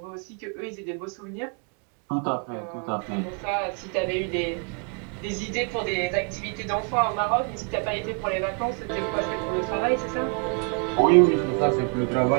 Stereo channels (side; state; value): left; quieter; 38.1 dB